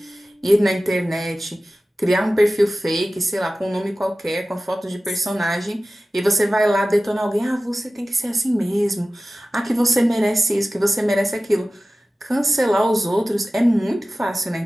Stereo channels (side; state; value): both; normal; correlation 0.95